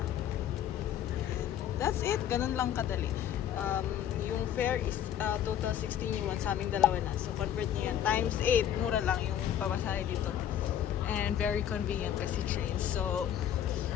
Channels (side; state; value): right; quieter; 10.3 dB